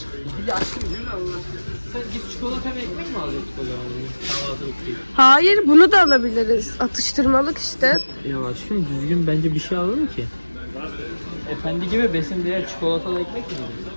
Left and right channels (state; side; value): inverted; both; correlation -1.00